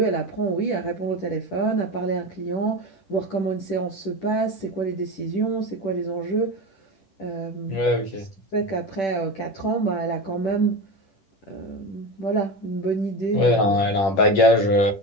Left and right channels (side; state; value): right; late; 10 ms